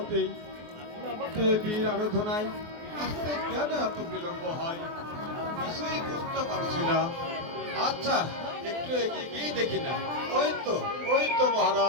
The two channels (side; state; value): left; late; 24 ms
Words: দেবীর আরাধনায়। আসতে কেন এত বিলম্ব হয় কিছুই বুঝতে পারছি না। আচ্ছা একটু এগিয়ে গিয়েই দেখি না। ওই তো